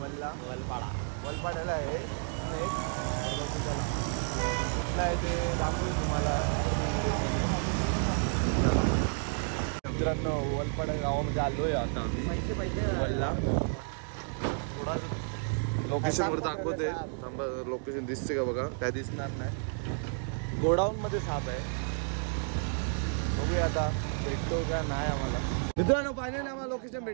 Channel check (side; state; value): left; silent; 57 dB below the other